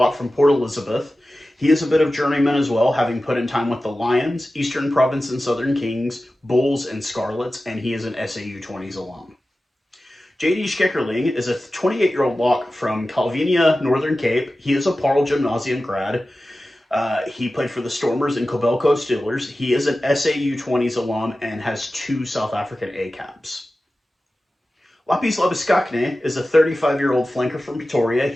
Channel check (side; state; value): both; normal; correlation 0.95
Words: from Port Elizabeth. He is a bit of journeyman as well, having put in time with the Lions, Eastern Province and Southern Kings, Bulls, and Scarlets, and he is an SAU 20s alum. JD Schickerling is a 28-year-old lock from Calvinia, Northern Cape. He is a Paarl Gymnasium grad. He played for the Stormers and Kobelco Steelers. He is an SAU 20s alum and has 2 South African A caps. Lapis Labiskakne is a 35-year-old flanker from Pretoria.